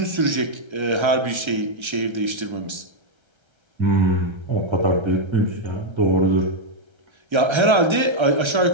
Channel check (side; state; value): left; late; 1.3 ms